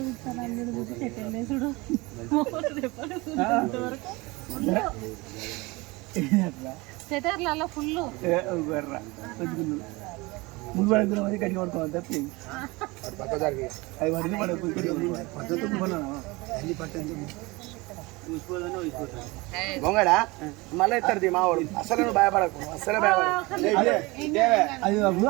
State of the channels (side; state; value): left; quieter; 23.7 dB